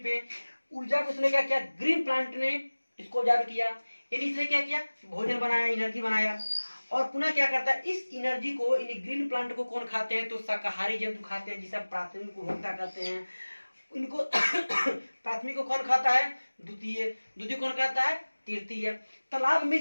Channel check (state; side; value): inverted; both; correlation -1.00